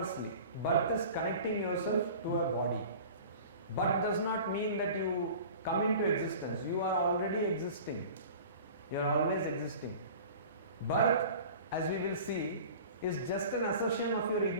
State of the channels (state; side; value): inverted; both; correlation -0.41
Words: birth is connecting yourself to a body. Birth does not mean that you come into existence. You are already existing. You are always existing. Birth, as we will see, is just an assertion of your